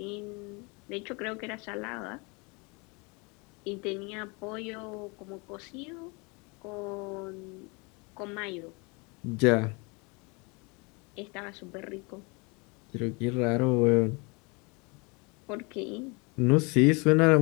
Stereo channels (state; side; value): quieter; right; 29.4 dB